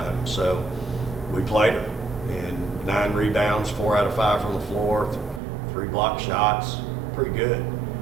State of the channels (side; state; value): left; drops out; at 5.4 s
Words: So we played her, and 9 rebounds, 4 out of 5 from the floor, 3 block shots, pretty good.